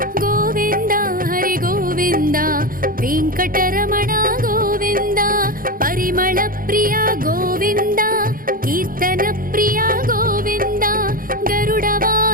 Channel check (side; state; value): left; late; 0.41 ms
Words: గోవింద హరి గోవింద వెంకటరమణ గోవింద పరిమళ ప్రియ గోవింద కీర్తన ప్రియ గోవింద గరుడ